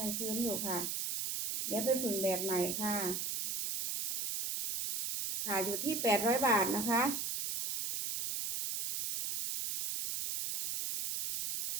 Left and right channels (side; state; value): right; noise; hiss, 2 dB below the sound